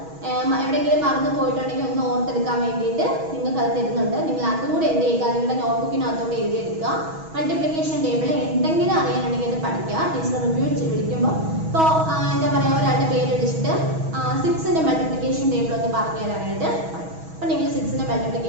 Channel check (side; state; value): left; late; 6.2 ms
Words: എവിടെയെങ്കിലും മറന്നു പോയിട്ടുണ്ടെങ്കിൽ ഒന്ന് ഓർത്തെടുക്കാൻ വേണ്ടിയിട്ട് നിങ്ങൾക്ക് അത് തരുന്നുണ്ട്. നിങ്ങൾ അതും കൂടെ എന്ത് ചെയ്യുക? നിങ്ങളുടെ നോട്ട്ബുക്കിനകത്തോട്ട് എഴുതിയെടുക്കുക. മൾട്ടിപ്ലിക്കേഷൻ ടേബിൾ എന്തെങ്കിലും അറിയാനുണ്ടെങ്കിൽ അത് പഠിക്കുക. ടീച്ചർ റിവ്യൂ വിളിക്കുമ്പോൾ ഇപ്പോൾ എന്താ പറയുക, ഒരാളുടെ പേര് വിളിച്ചിട്ട് 6ന്റെ മൾട്ടിപ്ലിക്കേഷൻ ടേബിൾ ഒന്ന് പറഞ്ഞു തരാനായിട്ട് പറയും. അപ്പം നിങ്ങൾ 6ന്റെ